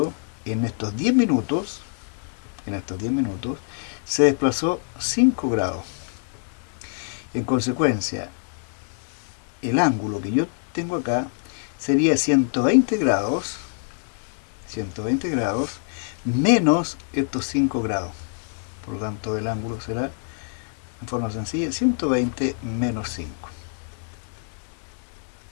en estos 10 minutos, se desplazó 5 grados. En consecuencia, el ángulo que yo tengo acá sería 120 grados menos estos 5 grados. Por lo tanto, el ángulo será, en forma sencilla, 120 menos 5.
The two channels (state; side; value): silent; right; 62 dB below the other